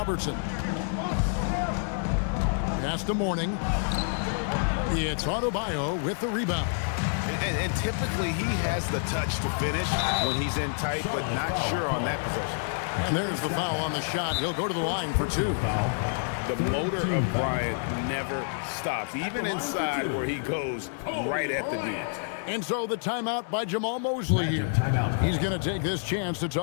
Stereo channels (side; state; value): right; silent; 58 dB below the other